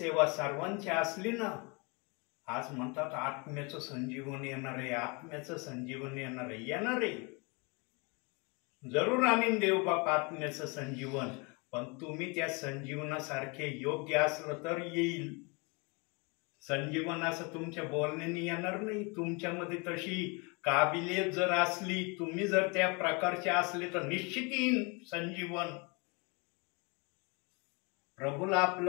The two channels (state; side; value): quieter; right; 29.9 dB